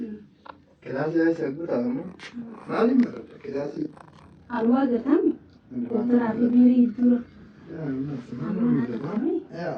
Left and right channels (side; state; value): both; identical; correlation 1.00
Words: كلاسي هاي سأقول تامو ما لي مرة كلاسي الواقع تامي ترى في بيري الدور يا الناس ما نقول